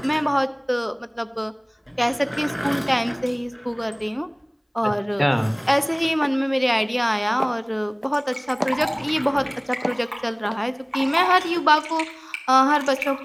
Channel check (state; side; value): identical; both; correlation 1.00